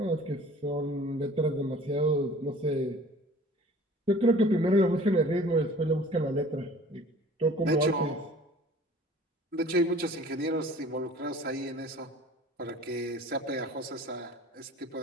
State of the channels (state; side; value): normal; both; correlation 0.47